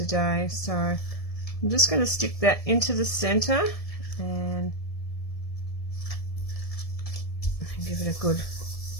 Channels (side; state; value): right; late; 1.7 ms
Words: So I'm just going to stick that into the center and give it a good